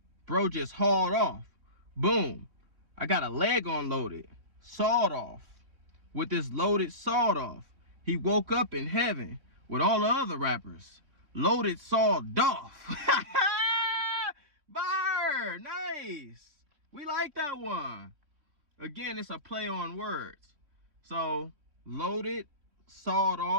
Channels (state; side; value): late; left; 3.5 ms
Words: Bro just hauled off. Boom. I got a leg unloaded. Sawed off. With this loaded sawed off. He woke up in heaven with all the other rappers. Loaded sawed off. Bar. Nice. We like that one. Again, it's a play on words. So, loaded, sawed